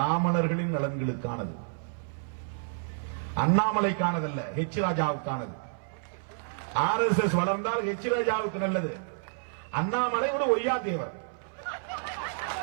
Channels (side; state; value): left; silent; 58 dB below the other